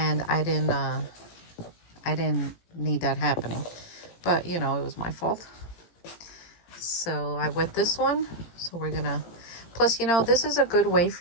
I didn't need that happening. But, you know, it was my fault. So I wet this one. So we're gonna, plus, you know, this is a good way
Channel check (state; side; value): late; right; 18 ms